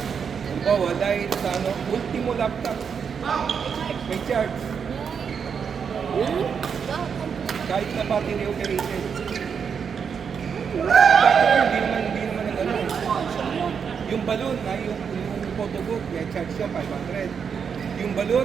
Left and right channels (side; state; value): left; quieter; 6.7 dB